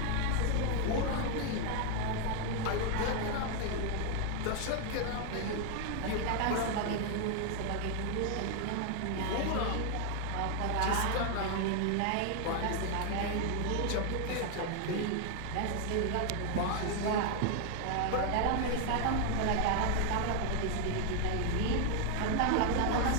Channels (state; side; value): different; both; correlation 0.00